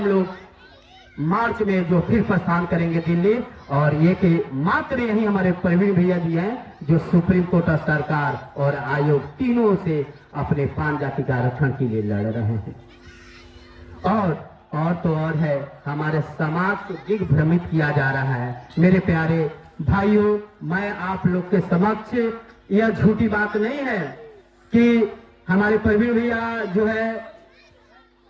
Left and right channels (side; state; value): both; identical; correlation 1.00